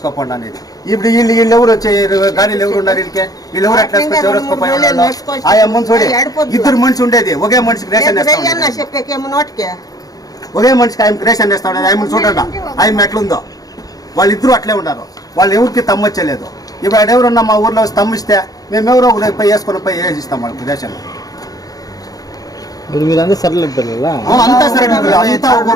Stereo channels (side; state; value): right; late; 0.18 ms